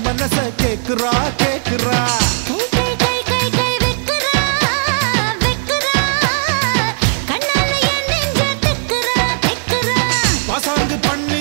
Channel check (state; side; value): silent; left; digital silence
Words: மனசை கேக்குறா கேக்குறா. பாசாங்கு